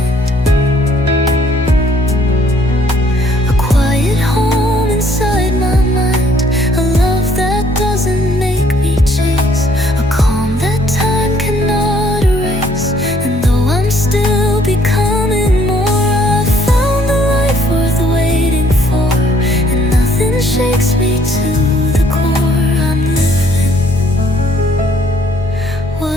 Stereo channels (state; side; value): normal; both; correlation 0.63